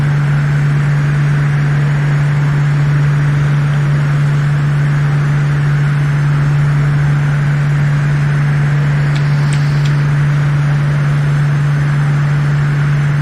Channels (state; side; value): identical; both; correlation 1.00